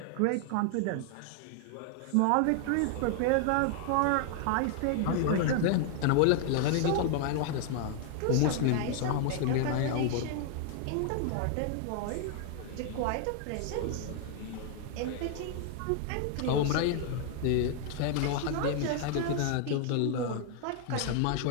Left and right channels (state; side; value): different; both; correlation 0.00